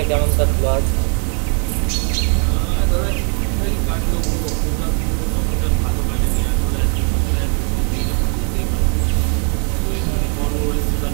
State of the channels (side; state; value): left; quieter; 38.8 dB